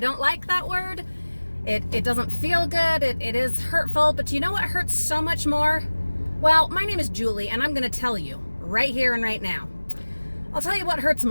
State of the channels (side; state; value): both; inverted; correlation -1.00